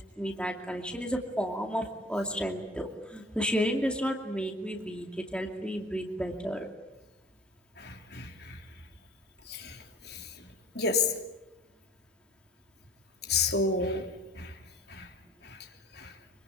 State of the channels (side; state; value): both; normal; correlation 0.50